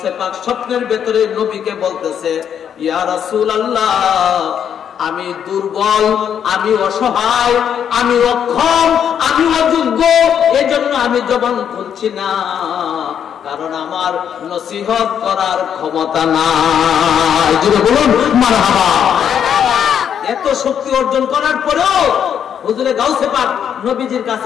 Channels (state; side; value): quieter; right; 8.6 dB